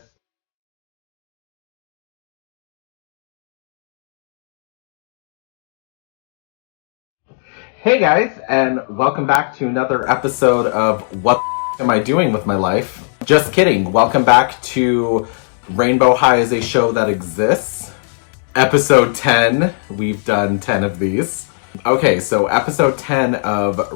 Hey guys, and welcome back to another episode of What Am I Doing With My Life? Just kidding. Welcome back to Rainbow High is a Show That Exists. Episode 10. We've done 10 of these. Okay, so episode 10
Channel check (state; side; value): silent; right; digital silence